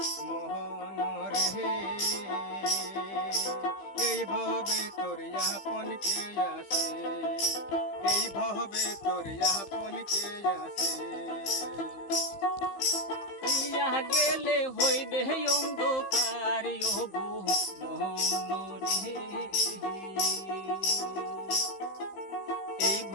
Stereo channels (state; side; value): late; right; 15 ms